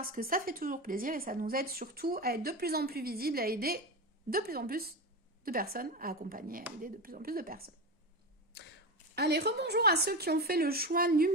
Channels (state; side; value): normal; both; correlation 0.20